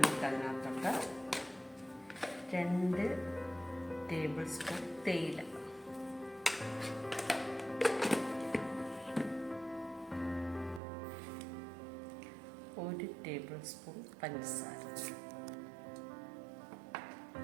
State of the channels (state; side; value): drops out; left; at 10.8 s